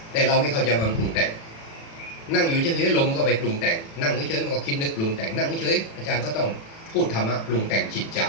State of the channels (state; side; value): late; right; 36 ms